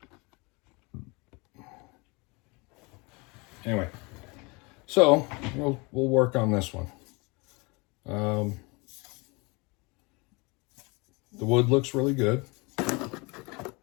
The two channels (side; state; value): right; quieter; 27.6 dB